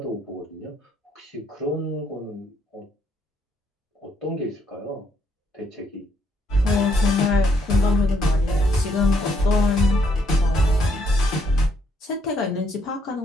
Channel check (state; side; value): normal; both; correlation 0.72